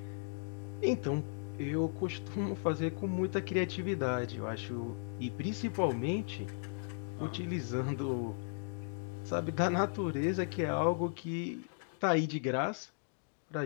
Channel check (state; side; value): silent; right; digital silence